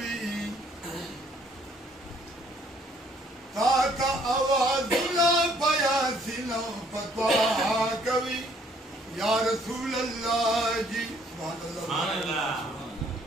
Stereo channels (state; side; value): normal; both; correlation 0.63